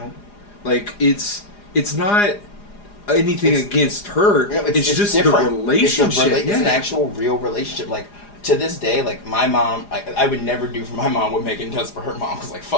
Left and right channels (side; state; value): right; late; 4.9 ms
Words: Like it's not anything against her. You know, it's just different. the relationship. It's an actual real relationship. Like to this day, like my mom, I would never do for my mom what Megan does for her mom. Cause like